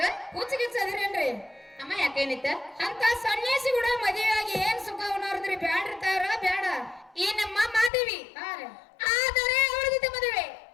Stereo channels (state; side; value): drops out; right; at 7.9 s